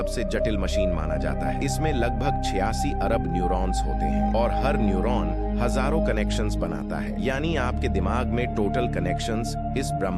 जटिल मशीन माना जाता है। इसमें लगभग 86 अरब न्यूरॉन्स होते हैं और हर न्यूरॉन हजारों कनेक्शंस बनाता है। यानी आपके दिमाग में टोटल कनेक्शंस इस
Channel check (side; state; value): both; identical; correlation 1.00